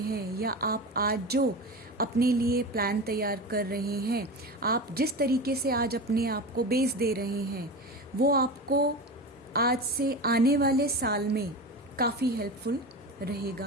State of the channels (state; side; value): normal; both; correlation 0.27